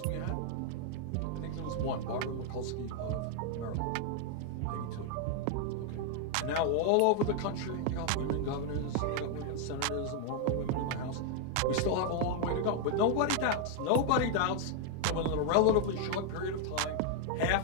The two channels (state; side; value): different; both; correlation 0.00